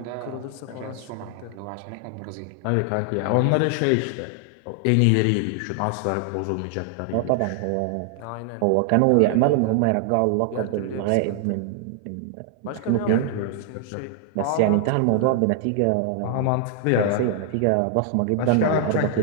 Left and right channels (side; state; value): both; different; correlation 0.00